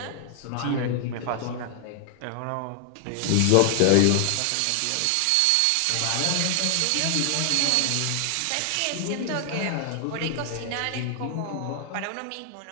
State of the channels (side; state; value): both; different; correlation 0.00